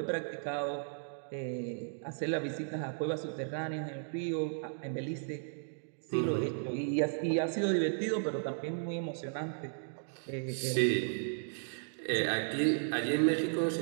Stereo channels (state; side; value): silent; left; digital silence